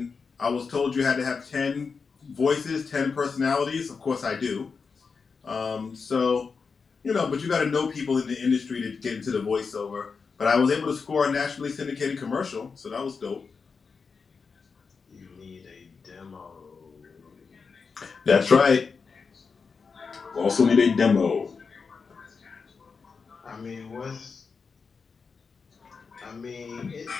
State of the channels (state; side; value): quieter; right; 5.2 dB